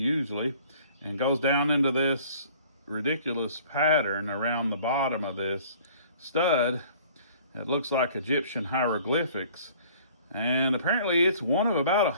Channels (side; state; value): both; inverted; correlation -0.52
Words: and goes down into this ridiculous pattern around the bottom of this stud. It looks like Egyptian hieroglyphics, and apparently it's one of about